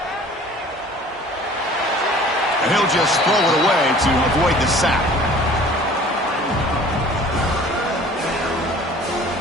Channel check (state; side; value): normal; both; correlation 0.48